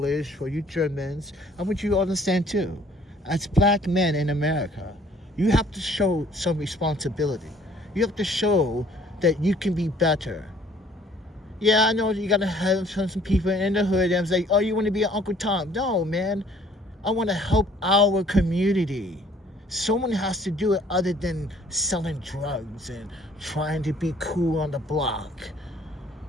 for you Germans, I want you to understand too. As black men in America, you have to show some responsibility. You have to show that you can be better. Yeah, I know you gotta have some people in the hood and say, oh, you want to be an Uncle Tom. No, man. I want to help our community. Someone has to do it other than selling drugs and trying to be cool on the block.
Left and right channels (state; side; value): normal; both; correlation 0.57